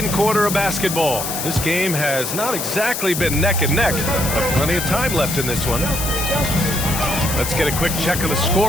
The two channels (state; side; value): noise; left; hiss, 4 dB below the sound